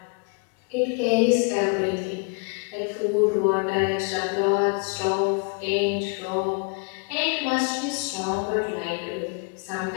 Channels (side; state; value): right; quieter; 33.8 dB